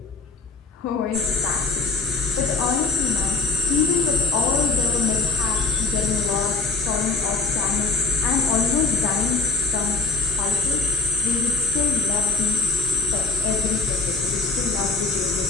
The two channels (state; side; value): quieter; right; 4.1 dB